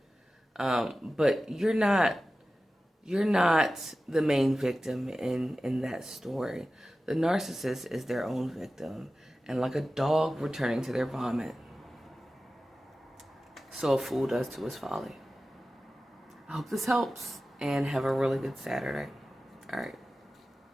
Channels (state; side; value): normal; both; correlation 0.95